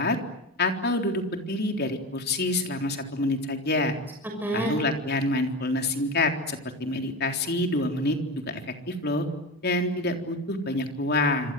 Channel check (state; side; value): normal; both; correlation 0.24